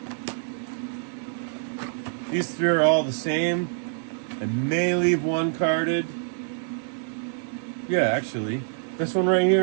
three are all the same. I may leave one carded. Yeah, actually. This one right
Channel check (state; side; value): silent; left; 60 dB below the other